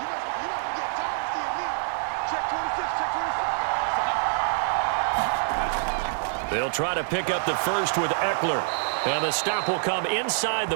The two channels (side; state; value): left; silent; digital silence